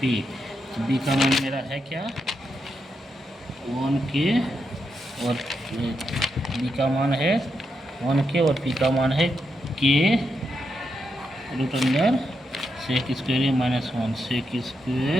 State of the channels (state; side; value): normal; both; correlation 0.83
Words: पी। तो बी का मान मेरा है क्या 1 के और बी का मान है 1 के और पी का मान है के root under sec square A minus 1। Sec